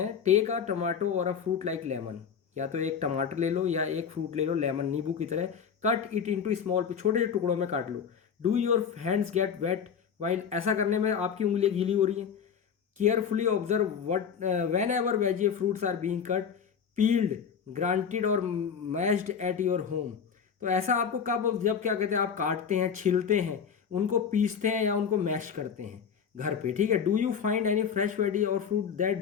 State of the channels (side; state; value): right; quieter; 7.1 dB